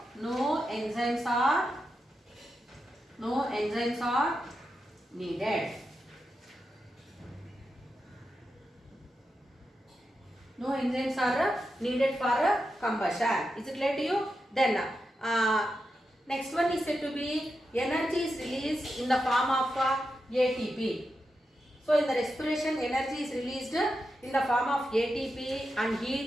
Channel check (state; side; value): normal; both; correlation 0.88